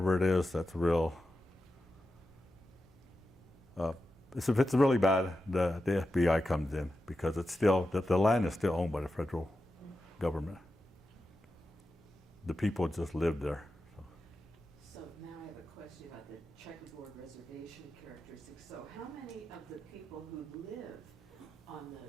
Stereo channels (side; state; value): both; normal; correlation 0.90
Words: it is, that's real. If it's really bad, the FBI comes in because it's still, the land is still owned by the federal government. The people just live there. So now I have a question about the checkerboard reservation characteristics. So how many of the people who live on the